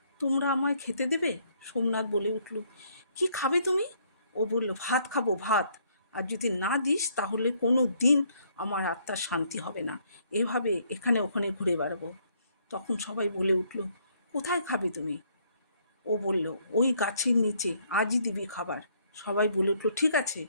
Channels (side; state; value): both; inverted; correlation -0.68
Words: তোমরা আমায় খেতে দেবে? সোমনাথ বলে উঠল, কি খাবে তুমি? ও বলল, ভাত খাবো, ভাত। আর যদি না দিস তাহলে কোনো দিন আমার আত্মার শান্তি হবে না। এভাবে এখানে ওখানে ঘুরে বেড়াবো। তখন সবাই বলে উঠল, কোথায় খাবে তুমি? ও বলল, ওই গাছের নিচে, আজই দিবি খাবার। সবাই বলে উঠল, ঠিক আছে,